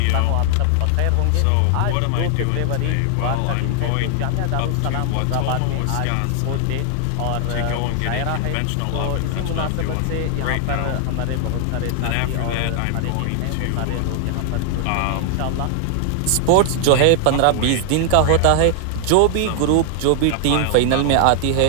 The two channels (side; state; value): both; different; correlation 0.00